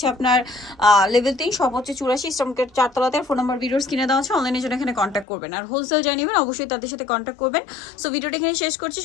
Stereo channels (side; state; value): right; drops out; at 5.2 s